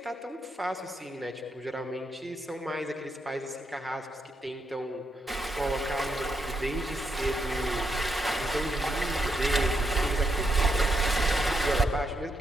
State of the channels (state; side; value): normal; both; correlation 0.81